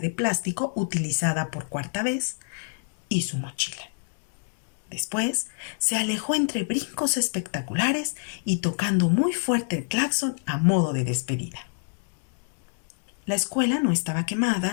plástico utilizada por cuarta vez y su mochila. Después se alejó entre brincos espectaculares y tocando muy fuerte el claxon a modo de despedida. La escuela no estaba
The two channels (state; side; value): silent; right; 60 dB below the other